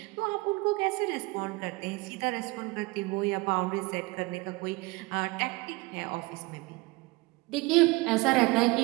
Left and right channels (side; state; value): left; quieter; 23.8 dB